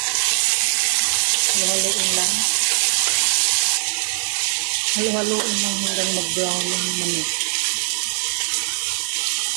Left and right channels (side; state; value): left; silent; 55 dB below the other